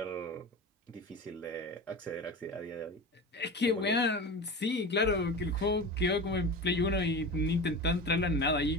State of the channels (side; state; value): both; normal; correlation 0.29